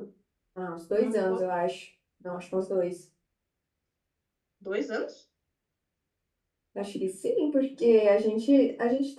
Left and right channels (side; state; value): both; identical; correlation 1.00